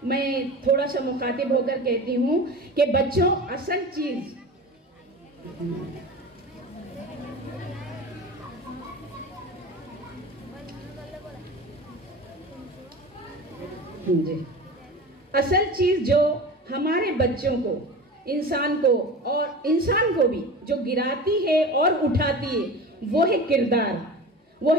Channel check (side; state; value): both; normal; correlation 0.33